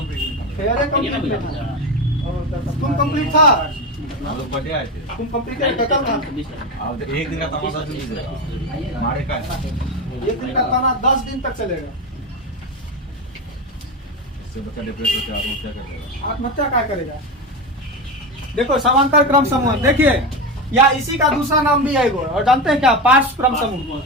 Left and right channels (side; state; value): both; normal; correlation 0.18